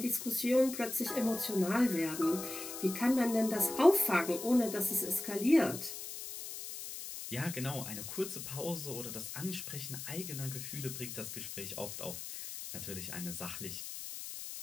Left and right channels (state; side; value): noise; left; hiss, 8 dB below the sound